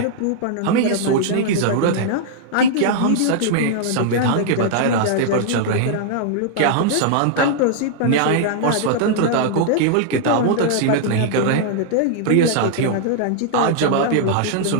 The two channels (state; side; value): different; both; correlation -0.01